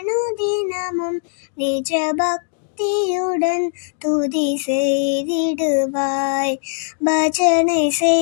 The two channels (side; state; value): right; silent; digital silence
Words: நிஜ பக்தியுடன் துதி செய்திடுவாய். பஜனை